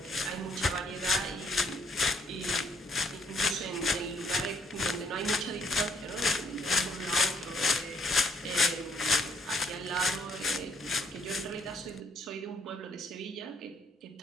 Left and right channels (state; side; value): normal; both; correlation 0.67